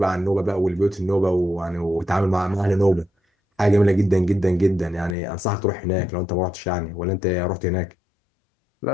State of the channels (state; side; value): drops out; right; at 5.2 s